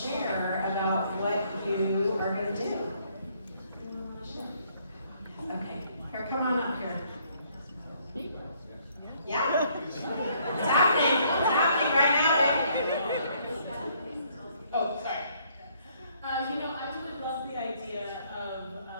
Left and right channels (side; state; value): both; inverted; correlation -0.66